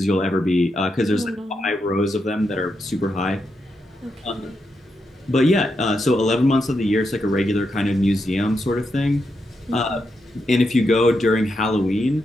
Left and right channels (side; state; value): both; normal; correlation 0.84